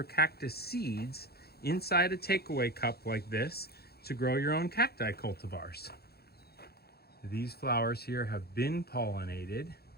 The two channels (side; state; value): right; late; 0.46 ms